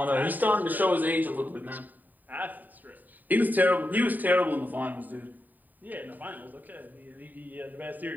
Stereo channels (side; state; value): left; late; 0.086 ms